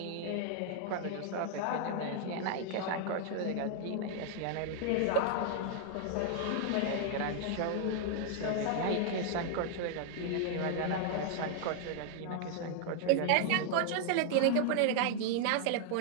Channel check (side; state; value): both; different; correlation 0.00